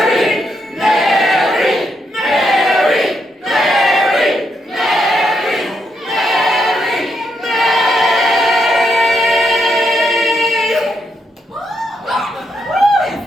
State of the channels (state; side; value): normal; both; correlation 0.80